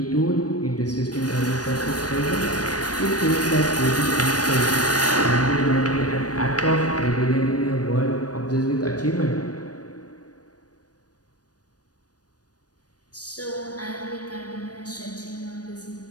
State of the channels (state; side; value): late; right; 0.68 ms